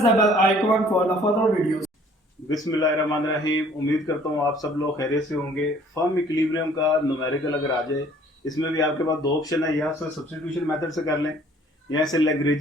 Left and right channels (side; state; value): both; normal; correlation 0.56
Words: bell icon for the further videos. बिस्मिल्लाहिर्रहमानिर्रहीम। उम्मीद करता हूँ आप सब लोग खैरियत से होंगे। फर्म इक्विलिब्रियम का न्यूमेरिकल अगर आ जाए, इसमें भी आपके पास दो ऑप्शन है, या इसे सब्स्टिट्यूशन मेथड से कर लें या इसे